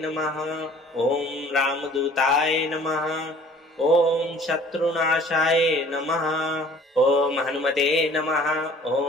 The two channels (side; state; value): both; normal; correlation 0.52